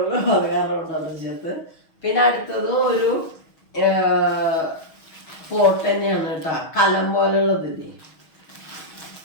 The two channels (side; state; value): right; late; 6.3 ms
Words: അത് കാരണം കൊണ്ടാണ് ചേർത്ത്. പിന്നെ അടുത്തതും ഒരു പോട്ട് തന്നെയാണ് കേട്ടോ, കലം പോലെയുള്ളതില്ലേ.